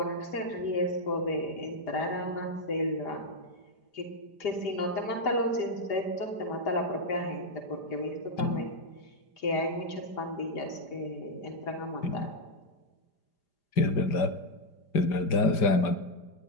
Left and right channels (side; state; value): right; late; 5.0 ms